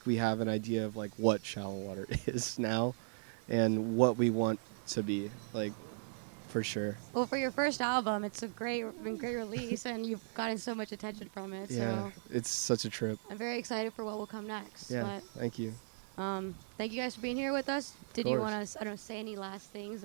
we have an idea of like what shallow water is now and what we want to be like for sure. Yeah, it's such a trip. Yeah, thank you. Of course.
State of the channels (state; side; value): silent; left; digital silence